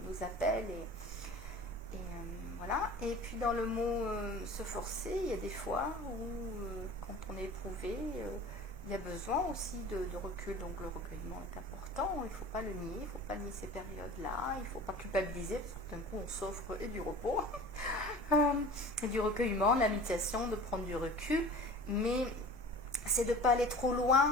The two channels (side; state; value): both; normal; correlation 0.40